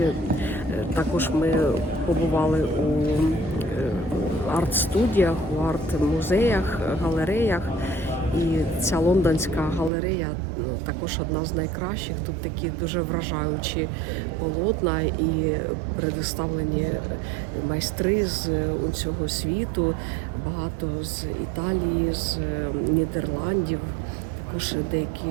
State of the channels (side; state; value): left; drops out; at 9.9 s